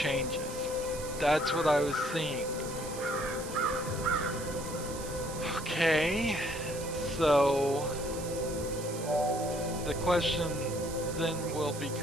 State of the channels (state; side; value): noise; right; hiss, 11 dB below the sound